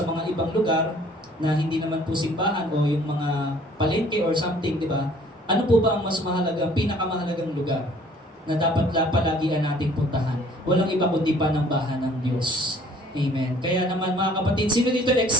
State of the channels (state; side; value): normal; both; correlation 0.56